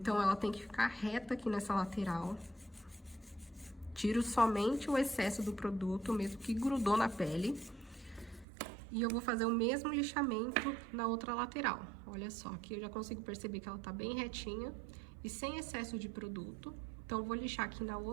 ela tem que ficar reta aqui nessa lateral. Tiro somente o excesso do produto, mesmo que grudou na pele. E eu vou fazer o mesmo lixamento na outra lateral. Olha só, aqui eu já consigo perceber que ela tá bem retinha e sem excesso de produto. Então, eu vou lixar aqui na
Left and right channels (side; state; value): left; drops out; at 8.5 s